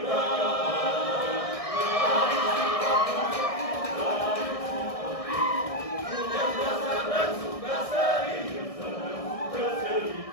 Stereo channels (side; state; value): right; late; 1.6 ms